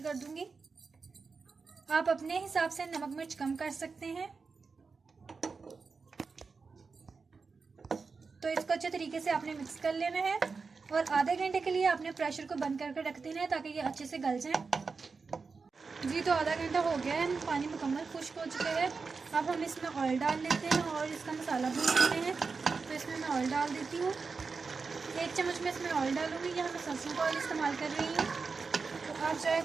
कर दूंगी। आप अपने हिसाब से नमक मिर्च कम कर सकते हैं। तो इसको अच्छे तरीके से आपने मिक्स कर लेना है और आधे घंटे के लिए आपने प्रेशर को बंद करके रख देना है ताकि ये अच्छे से गल जाए। जी, तो आधा घंटा हो गया है, पानी मुकम्मल खुश्क हो चुका है। अब हम इसमें ऑयल डाल लेते हैं और इसका मसाला भून लेते हैं। तो इसमें मैं ऑयल डाल देती हूँ। 1 चम्मच में इसमें ऑयल डालूंगी। यहाँ मैं सरसों का ऑयल इस्तेमाल कर रही हूँ, तो आप चाहे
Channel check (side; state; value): left; quieter; 4.7 dB